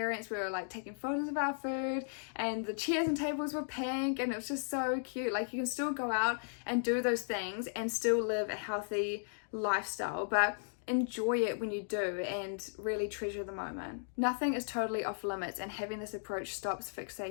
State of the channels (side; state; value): right; silent; digital silence